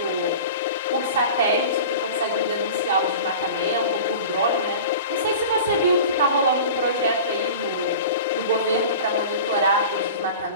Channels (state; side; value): inverted; both; correlation -0.36